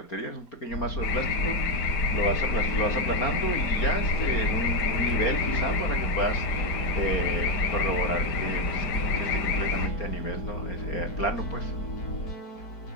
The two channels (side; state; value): right; late; 4.4 ms